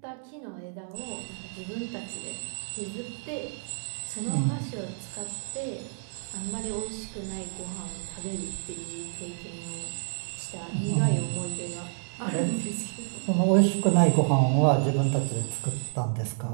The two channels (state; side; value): silent; left; 58 dB below the other